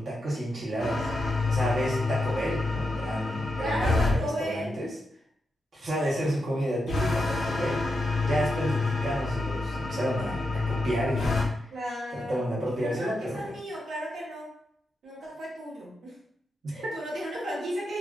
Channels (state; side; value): normal; both; correlation 0.86